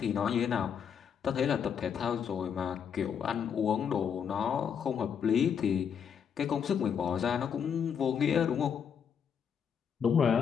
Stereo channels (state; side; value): quieter; right; 7.6 dB